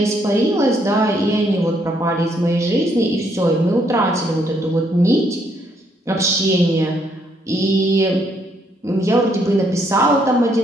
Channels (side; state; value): both; normal; correlation 0.71